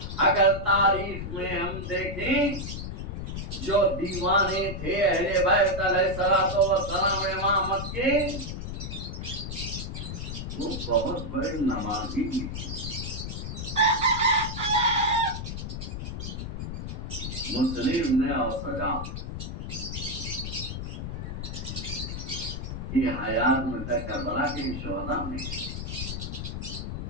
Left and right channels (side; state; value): left; noise; rumble, 6 dB below the sound